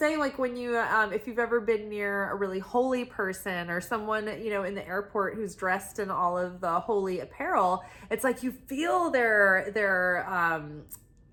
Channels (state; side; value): identical; both; correlation 1.00